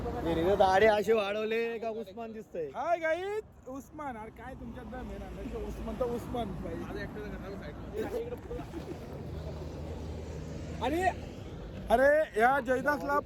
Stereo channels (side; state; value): both; identical; correlation 1.00